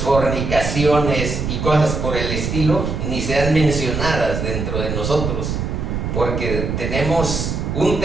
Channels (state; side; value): noise; right; rumble, 2 dB below the sound